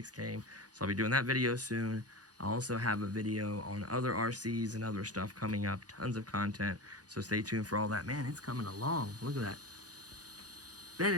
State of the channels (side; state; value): left; late; 0.68 ms